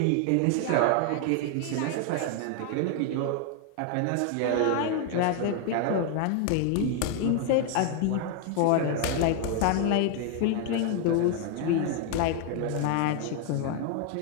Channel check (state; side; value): different; both; correlation 0.00